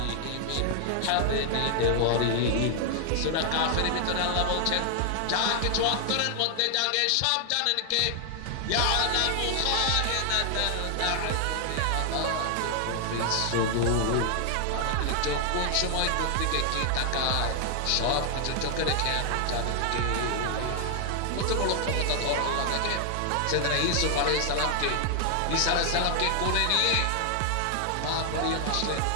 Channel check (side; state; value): both; different; correlation 0.00